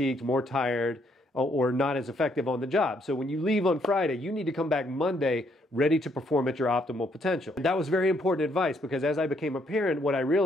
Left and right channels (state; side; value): normal; both; correlation 0.71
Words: more tired, or not as effective on the job. So when you leave on Friday, you need to come back Monday ready to perform at your optimal potential. And that was very important advice because as I became a parent, what I